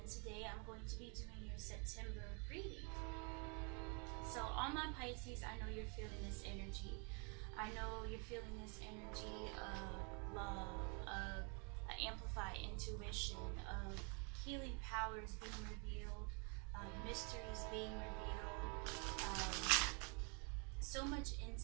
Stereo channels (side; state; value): left; quieter; 35.2 dB